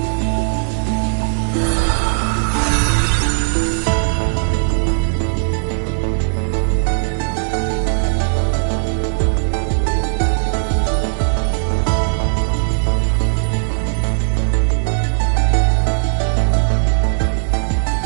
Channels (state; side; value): silent; left; digital silence